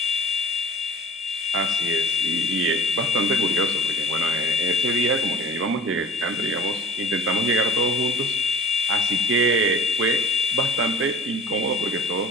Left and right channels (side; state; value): both; normal; correlation 0.43